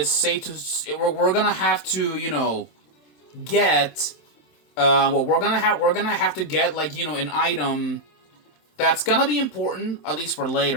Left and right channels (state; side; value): late; right; 27 ms